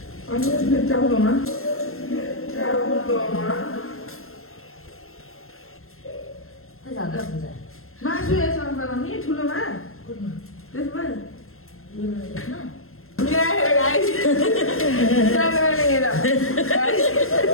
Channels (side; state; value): right; late; 0.62 ms